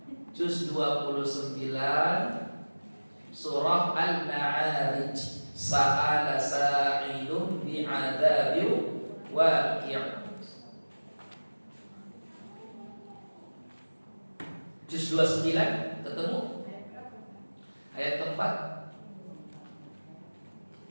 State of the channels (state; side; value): inverted; both; correlation -1.00